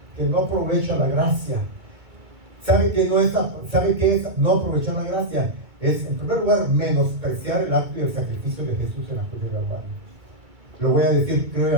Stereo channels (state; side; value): late; left; 2.2 ms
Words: que no aprovecha la gracia. ¿Sabe qué es no aprovechar la gracia? Es, en primer lugar, menospreciar el acto y el sacrificio de Jesús en la cruz de Calvario. Lo voy a decir